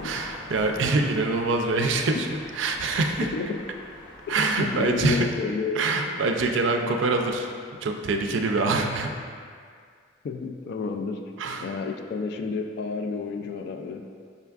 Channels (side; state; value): both; normal; correlation 0.31